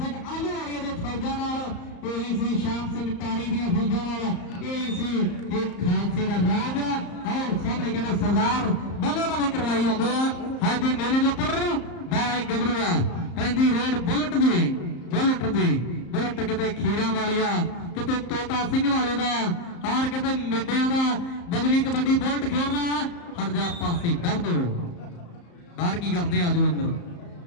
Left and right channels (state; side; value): late; right; 34 ms